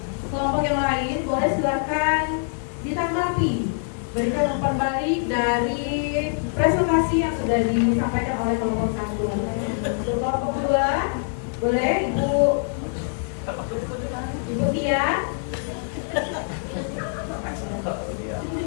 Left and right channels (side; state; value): right; silent; digital silence